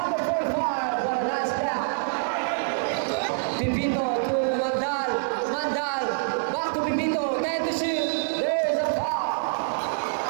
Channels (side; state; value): left; silent; 61 dB below the other